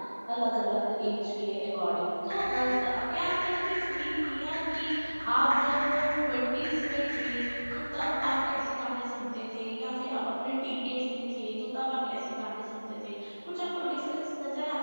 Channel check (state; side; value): inverted; both; correlation -1.00